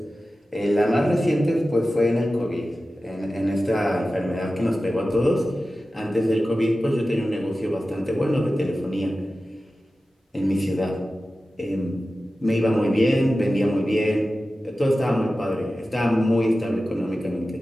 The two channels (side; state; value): both; normal; correlation 0.94